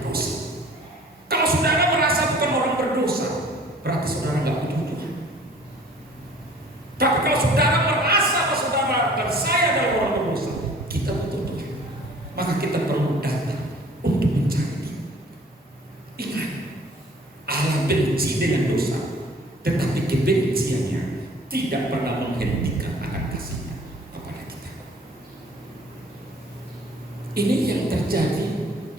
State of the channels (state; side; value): normal; both; correlation 0.51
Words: Kalau saudara merasa bukan orang berdosa, berarti saudara gak butuh Tuhan. Tapi kalau saudara merasa bahwa saudara dan saya adalah orang berdosa, kita butuh Tuhan. Maka kita perlu datang untuk mencari. Ingat, Allah benci dengan dosa, tetapi kebenciannya tidak pernah menghentikan akan kasih-Nya kepada kita. Ini yang terjadi